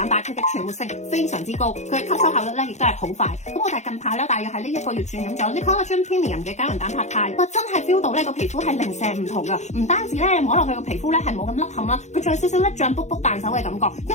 白，佢嘅存活性非常之高，佢嘅吸收效率咧亦都係好快。咁我哋近排咧大約喺呢1個月轉飲咗呢 Collagen Premium 嘅膠原蛋白肽，哇真係 feel 到咧個皮膚係零舍唔同噶，唔單止咧摸落去個皮膚咧係冇咁凹陷啦，佢仲有少少咧脹卜卜彈手嘅感覺，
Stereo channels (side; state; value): right; late; 0.33 ms